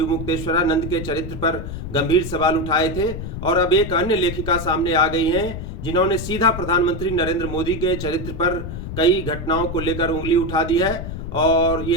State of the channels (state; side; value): noise; left; rumble, 7 dB below the sound